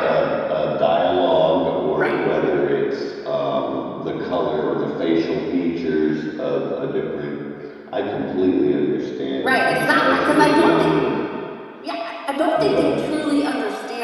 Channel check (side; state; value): both; identical; correlation 1.00